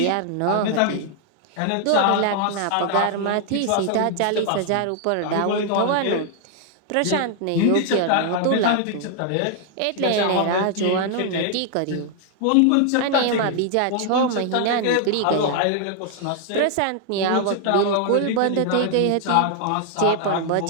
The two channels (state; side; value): different; both; correlation 0.00